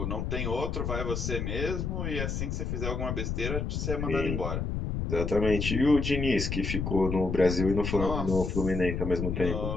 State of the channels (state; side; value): noise; left; rumble, 2 dB below the sound